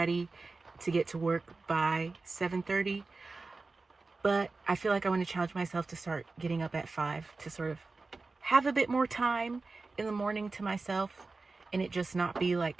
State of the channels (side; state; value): left; quieter; 3.8 dB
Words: to get to work by 7:30. But I feel like I want to challenge myself to start getting up at 5 to sort of have a bit more time in the morning to myself, and it just not be